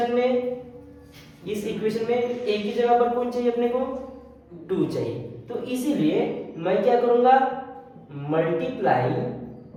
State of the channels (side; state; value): both; identical; correlation 1.00